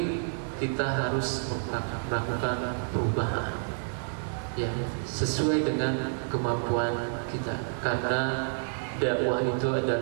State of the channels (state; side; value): silent; left; digital silence